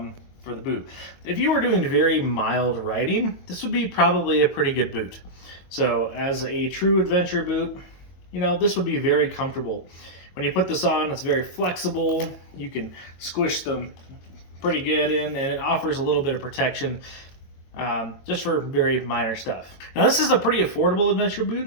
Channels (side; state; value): right; late; 22 ms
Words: for the boot. If you were doing very mild riding, this would be probably a pretty good boot. So, as a true adventure boot, you know, this would be very comfortable. When you put this on, it's very flexible. You can squish them pretty good in, and it offers a little bit of protection. Just for very minor stuff. Now this is a pretty affordable adventure